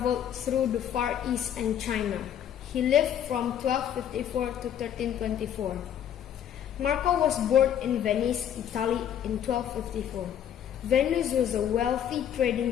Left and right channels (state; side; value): quieter; right; 9.7 dB